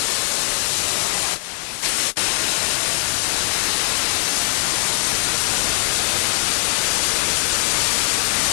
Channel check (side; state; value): right; silent; digital silence